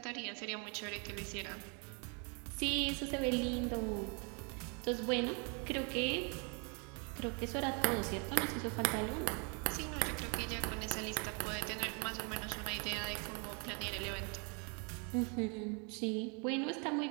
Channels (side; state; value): left; quieter; 35.7 dB